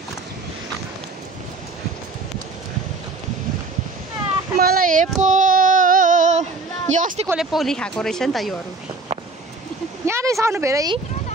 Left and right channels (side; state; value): left; quieter; 3.5 dB